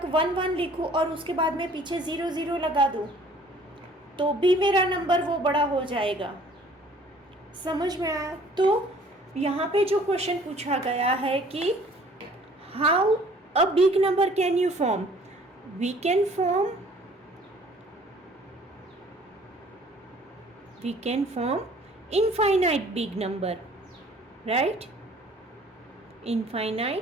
1 लिखूँ और उसके बाद में पीछे 0 लगा दूँ, तो भी मेरा नंबर वो बड़ा हो जाएगा। समझ में आया। तो यहाँ पे जो क्वेश्चन पूछा गया है कि how a big number can you form, we can form infinite big number, right?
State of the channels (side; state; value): both; normal; correlation 0.54